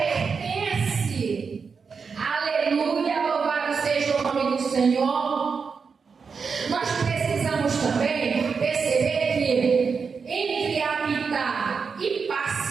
Aleluia, louvado seja o nome do Senhor. Nós precisamos também perceber que entre habitar e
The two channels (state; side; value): quieter; left; 5.5 dB